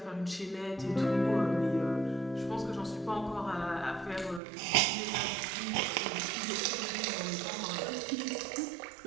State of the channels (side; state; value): left; drops out; at 4.4 s